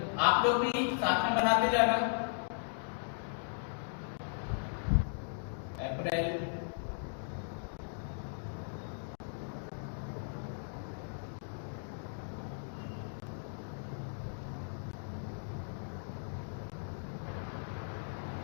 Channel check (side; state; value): right; silent; digital silence